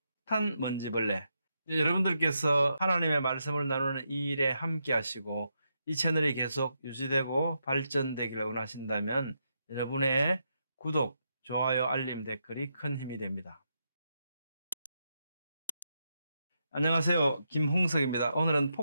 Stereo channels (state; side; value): inverted; both; correlation -0.82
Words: 폭탄 먼지벌레. 여러분들께서 하나님의 말씀을 나누는 이 일에 함께 하시고 이 채널이 계속 유지되고 발전되기를 원하신다면 여러분의 구독, 좋아요, 알림, 댓글이 큰 힘이 됩니다. 안녕하세요, 김홍석입니다. 오늘은